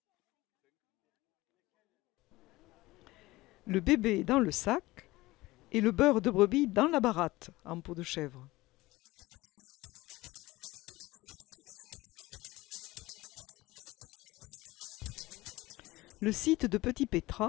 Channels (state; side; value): quieter; right; 19.4 dB